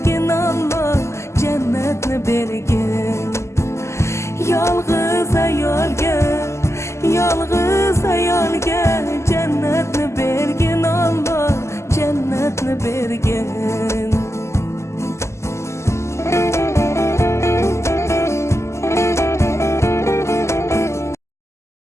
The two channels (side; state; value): right; late; 0.13 ms